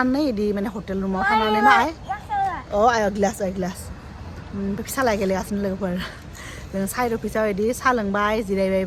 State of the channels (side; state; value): both; identical; correlation 1.00